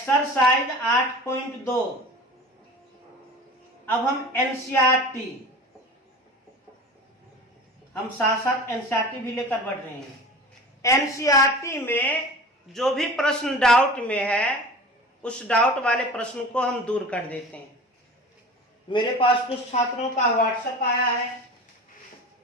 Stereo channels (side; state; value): both; normal; correlation 0.37